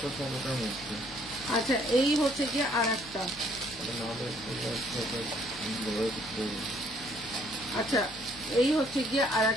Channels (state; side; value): noise; left; hum, 19 dB below the sound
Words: তো সব ওটার মধ্যে। আচ্ছা, এই হচ্ছে গিয়ে আর একটা, আচ্ছা এই হচ্ছে গিয়ে আর